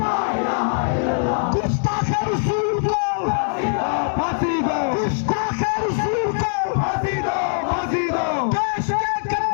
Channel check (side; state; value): right; silent; digital silence